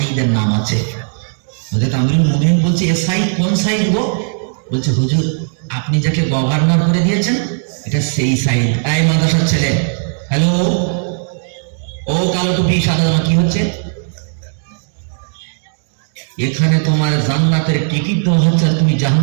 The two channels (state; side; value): silent; left; digital silence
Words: নাম আছে। হযরত আমিরুল মুমিনিন বলছে এ সাইদ কোন সাইদ গো? বলছে হুজুর আপনি যাকে গভর্নর করে দিয়েছেন এটা সেই সাইদ। এই মাদ্রাসার ছেলে, হ্যালো, ও কালো টুপি সাদা জামা কি হচ্ছে এখানে? তোমার জান্নাতের টিকিট দেওয়া হচ্ছে আর তুমি